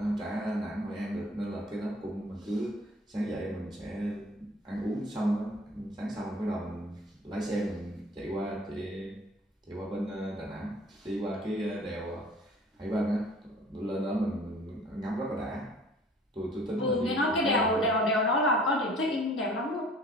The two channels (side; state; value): both; normal; correlation 0.50